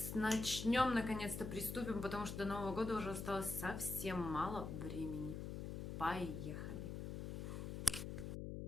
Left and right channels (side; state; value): left; noise; hum, 5 dB below the sound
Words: начнем, наконец-то приступим, потому что до Нового года уже осталось совсем мало времени. Поехали!